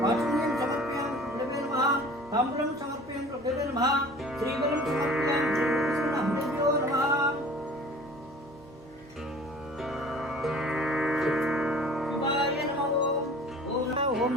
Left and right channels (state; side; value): normal; both; correlation 0.46